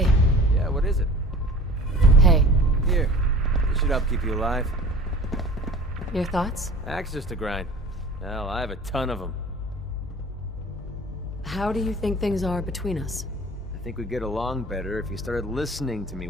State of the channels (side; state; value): both; normal; correlation 0.43